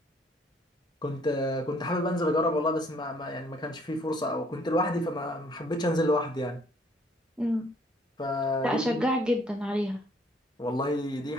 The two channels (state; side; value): normal; both; correlation 0.62